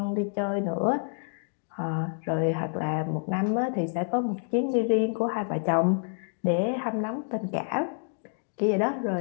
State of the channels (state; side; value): silent; right; 59 dB below the other